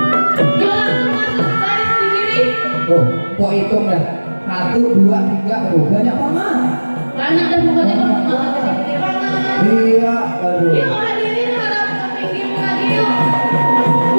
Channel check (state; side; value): inverted; both; correlation -1.00